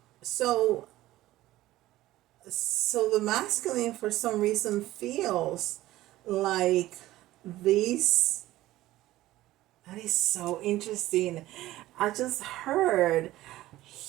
So the masculine for some reason feels like these That is so interesting. I just heard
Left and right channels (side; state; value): left; quieter; 16.1 dB